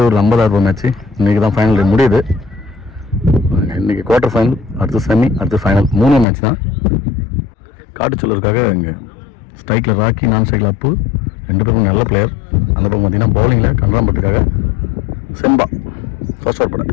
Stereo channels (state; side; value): drops out; right; at 6.2 s